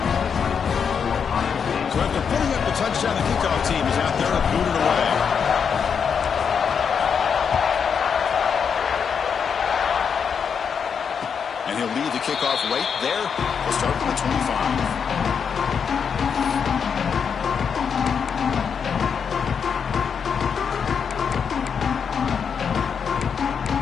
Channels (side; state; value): right; quieter; 6.7 dB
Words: So after putting up the touchdown, the kickoff team is out there to boot it away. And he'll lead the kickoff right there. We'll start from the 25.